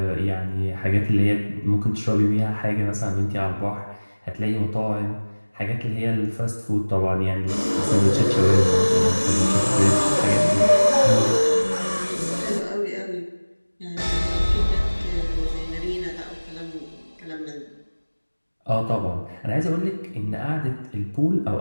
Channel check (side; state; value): both; inverted; correlation -1.00